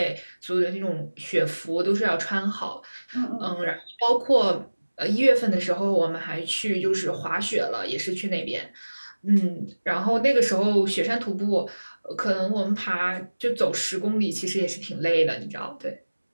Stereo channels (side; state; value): both; inverted; correlation -1.00